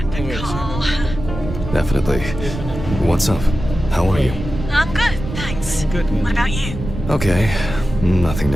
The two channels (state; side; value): noise; right; rumble, 8 dB below the sound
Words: to call. Definitely. What's up? How are you? I'm good, thanks. Good. What about you? Okay. Nothing